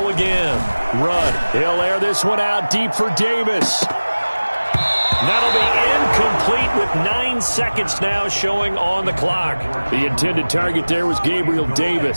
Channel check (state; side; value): inverted; both; correlation -1.00